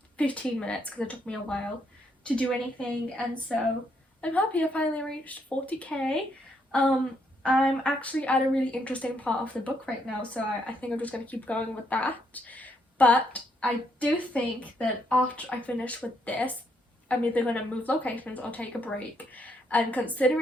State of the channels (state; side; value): normal; both; correlation 0.74